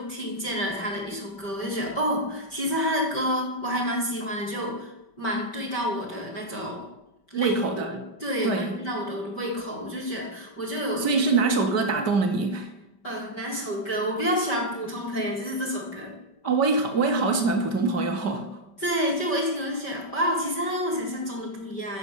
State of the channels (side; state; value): right; late; 5.1 ms